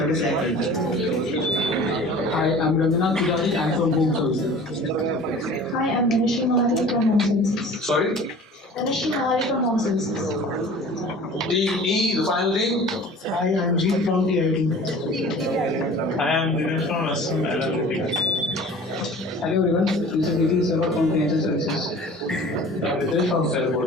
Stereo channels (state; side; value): normal; both; correlation 0.43